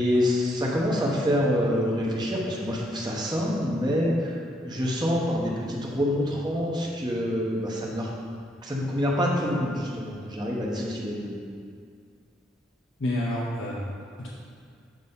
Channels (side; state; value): both; normal; correlation 0.74